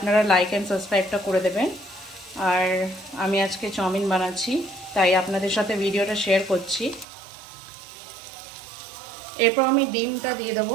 লাইক অ্যান্ড সাবস্ক্রাইবটা করে দেবেন। আর আমি আজকে চাউমিন বানাচ্ছি, তাই আপনাদের সাথে ভিডিওটা শেয়ার করছি। এরপর আমি ডিমটা দিয়ে দেবো।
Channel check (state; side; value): drops out; left; at 7.1 s